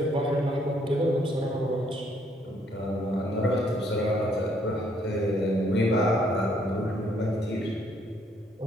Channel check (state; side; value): normal; both; correlation 0.68